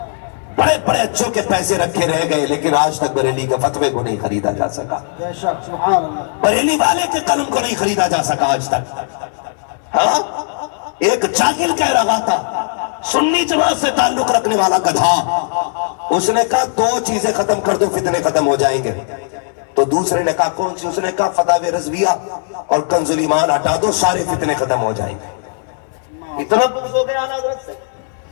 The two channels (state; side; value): silent; right; digital silence